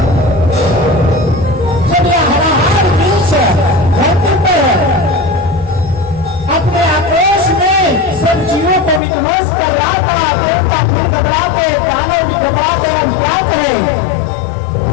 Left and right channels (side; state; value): right; drops out; at 9.0 s